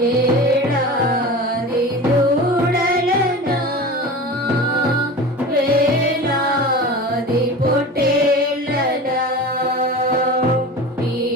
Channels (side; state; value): both; normal; correlation 0.33